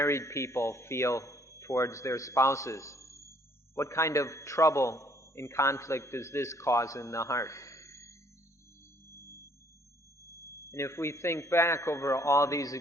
people feel towards their spouses. What kind of trouble and conflict does this cause in the heart? And if we think back over all these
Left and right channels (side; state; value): both; normal; correlation 0.63